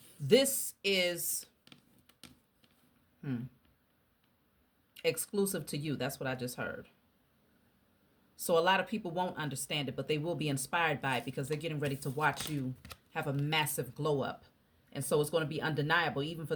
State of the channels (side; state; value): both; identical; correlation 1.00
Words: This is Exclusive to you. That's what I just heard. So a lot of people won't understand it, but they will be inspired by it because they're getting ready to watch you have a massive glow up. And so it's going to be undeniable, even for